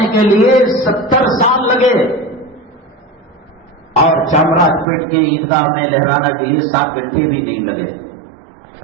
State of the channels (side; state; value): left; drops out; at 4.9 s